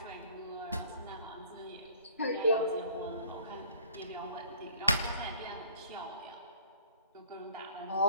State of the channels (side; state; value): both; inverted; correlation -0.53